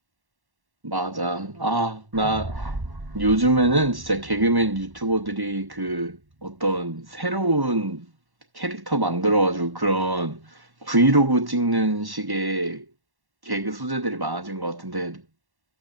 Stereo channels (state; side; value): late; left; 1.1 ms